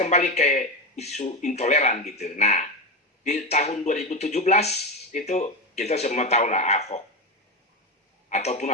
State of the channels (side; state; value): both; normal; correlation 0.16